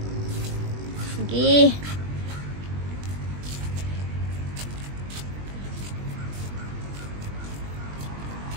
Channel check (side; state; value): left; late; 20 ms